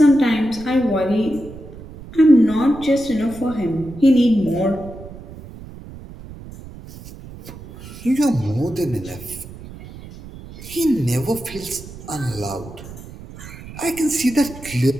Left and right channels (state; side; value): noise; right; rumble, 15 dB below the sound